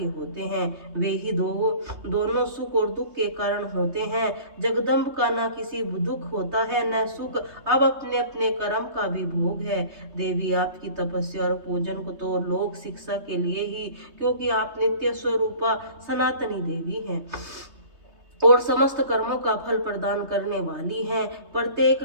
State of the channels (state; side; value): late; left; 3.2 ms